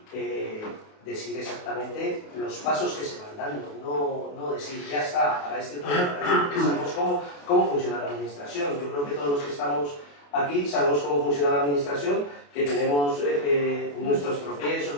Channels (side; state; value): right; late; 28 ms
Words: decir exactamente los pasos que se van dando, no decir ya está, para este tema, porque sabemos cómo funciona la administración. Yo creo que todos los que estamos aquí sabemos cómo funciona la administración, que tenemos nuestros